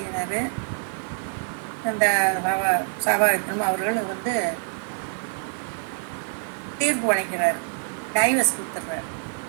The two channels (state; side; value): silent; left; 61 dB below the other